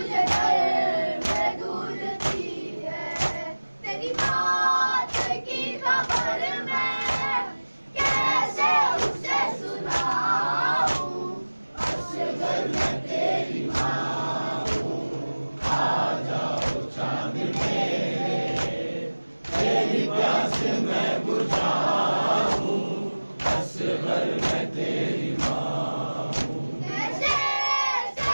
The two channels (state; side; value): inverted; both; correlation -1.00